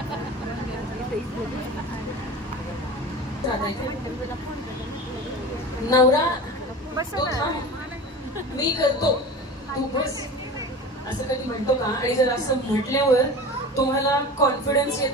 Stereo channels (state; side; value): normal; both; correlation 0.33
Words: नवरा तो थांब मी करतो तू बस असं कधी म्हणतो का? आणि जर असं म्हटल्यावर तुम्हाला कॉन्फिडन्स